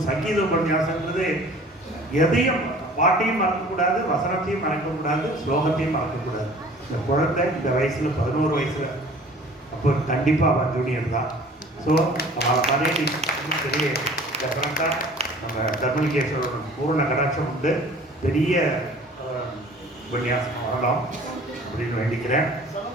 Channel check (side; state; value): both; normal; correlation 0.48